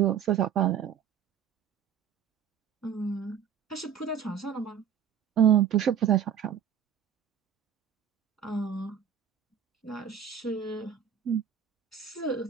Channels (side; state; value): left; quieter; 8.2 dB